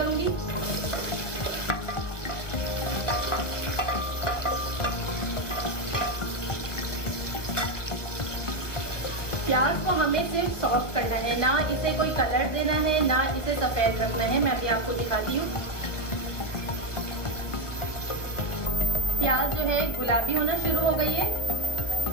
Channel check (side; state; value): right; late; 1.1 ms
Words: प्याज को हमें सिर्फ सॉफ्ट करना है, ना इसे कोई कलर देना है, ना इसे सफेद रखना है। मैं अभी आपको दिखाती हूँ। प्याज जो है गुलाबी होना शुरू हो गई है,